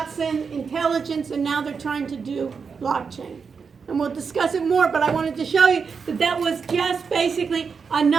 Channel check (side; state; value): left; quieter; 5.7 dB